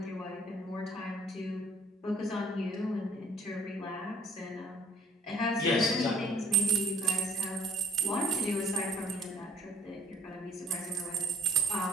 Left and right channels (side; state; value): both; normal; correlation 0.55